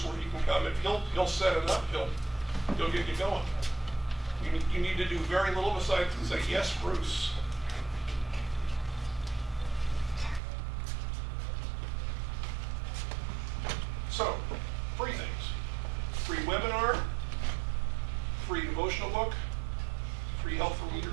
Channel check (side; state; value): left; drops out; at 10.4 s